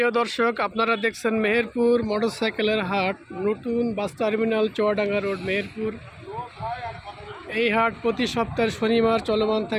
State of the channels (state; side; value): identical; both; correlation 1.00